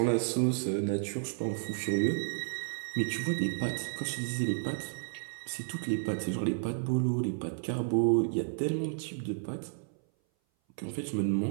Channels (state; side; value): silent; left; 56 dB below the other